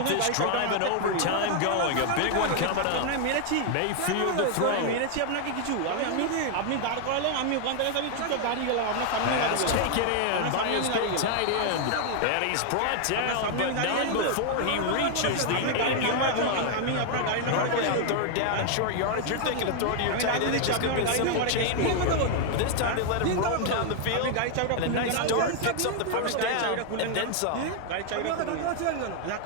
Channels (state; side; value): different; both; correlation 0.00